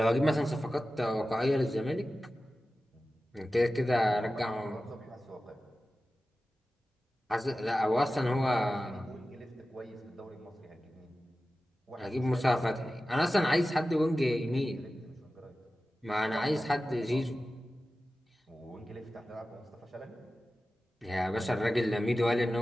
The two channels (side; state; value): both; normal; correlation 0.95